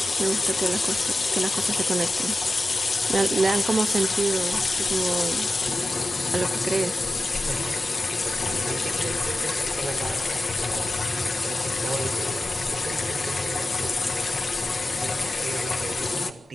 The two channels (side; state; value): both; normal; correlation 0.93